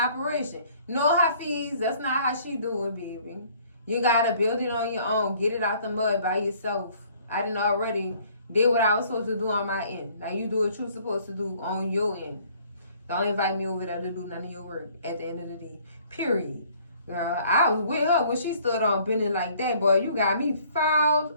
No, Hafiz, that's not how she do it, baby. You got to build it on your own. Get it out the mud by yourself. I done already did what I was supposed to do on my end. Now you do what you're supposed to do on your end. Don't invite me over there to do none of your work at the end of the day. Period. Girl, I was with her when she stood on bending like that, boy. You got me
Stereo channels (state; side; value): inverted; both; correlation -0.58